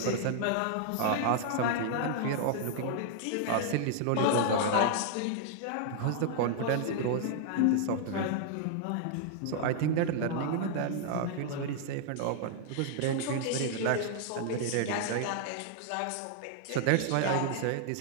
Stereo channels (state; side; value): different; both; correlation -0.01